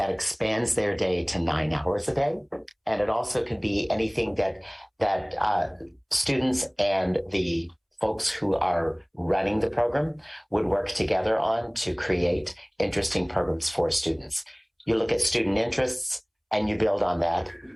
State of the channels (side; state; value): both; identical; correlation 1.00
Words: expands their day to 9 hours a day. And it also could be anything that students and the folks who are running the program would work together on to create interesting programs for students. You look at student interests and you build on that.